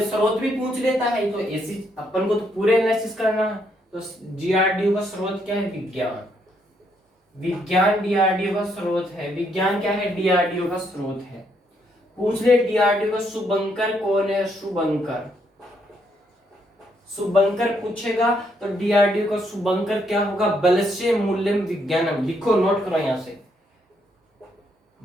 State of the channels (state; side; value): normal; both; correlation 0.74